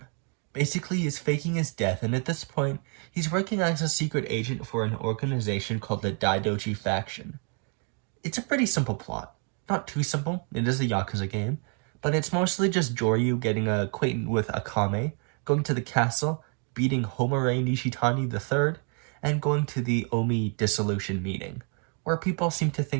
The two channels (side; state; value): left; quieter; 38.1 dB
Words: Basically, he's faking his death, and at this point, he's working as a secret agent for an organization called the Daidoji Faction. It's a pretty simple plot. Not too simple, it is a Yakuza game, but it's mostly just Joryu getting acquainted with Akame, going to the castle, beating Homare Nishitani III, and going to the Omi dissolution meeting, where people seem to